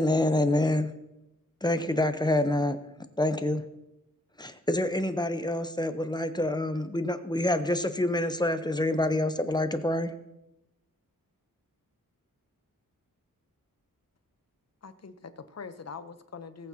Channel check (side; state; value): both; normal; correlation 0.70